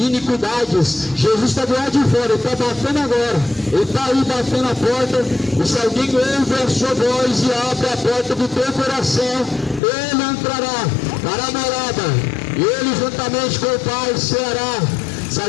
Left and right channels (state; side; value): drops out; right; at 9.8 s